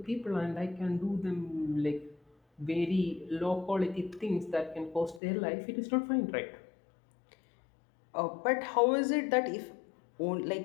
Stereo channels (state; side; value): drops out; right; at 5.2 s